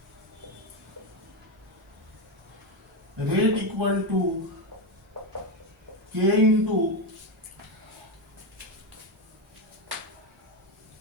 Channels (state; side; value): normal; both; correlation 0.11